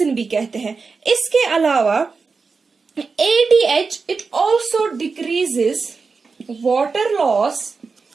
भी कहते हैं। इसके अलावा ADH it also decreases water loss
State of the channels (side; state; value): left; quieter; 4.7 dB